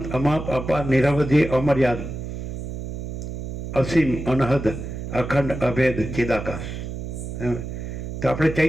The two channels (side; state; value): right; noise; hum, 6 dB below the sound